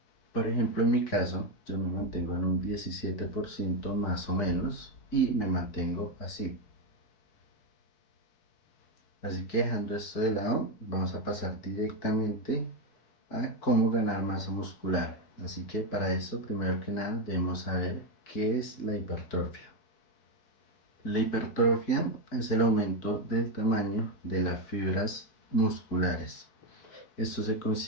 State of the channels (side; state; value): right; late; 4.6 ms